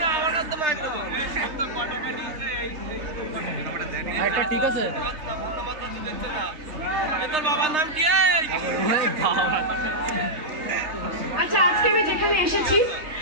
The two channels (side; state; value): left; late; 3.3 ms